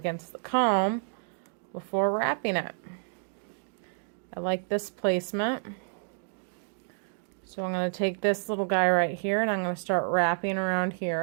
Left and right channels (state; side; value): silent; left; 58 dB below the other